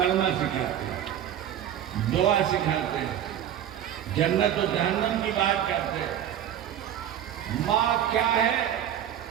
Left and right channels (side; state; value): left; quieter; 10.5 dB